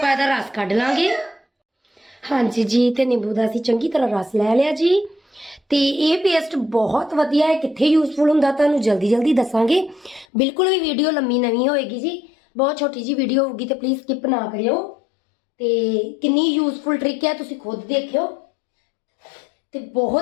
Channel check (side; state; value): right; drops out; at 10.2 s